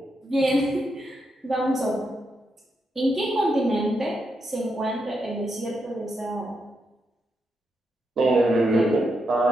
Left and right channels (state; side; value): normal; both; correlation 0.83